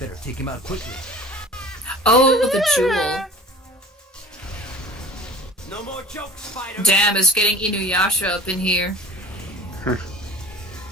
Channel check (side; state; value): both; normal; correlation 0.42